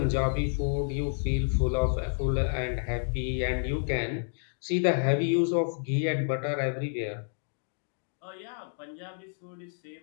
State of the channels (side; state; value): right; silent; digital silence